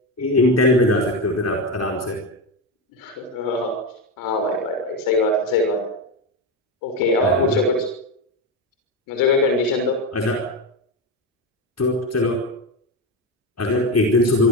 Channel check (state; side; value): normal; both; correlation 0.15